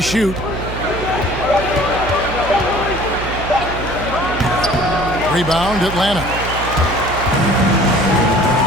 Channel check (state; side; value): noise; right; hum, 8 dB below the sound